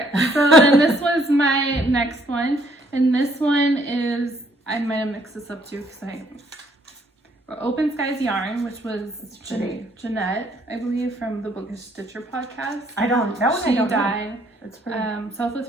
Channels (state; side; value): normal; both; correlation 0.66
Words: so then this was my next one, and this one is, I might have mixed this up too because Open Skies Yarn, which was pretty. Jeanette, I believe, from the Bookish Stitcher podcast. That one I She don't know. died. That's pretty.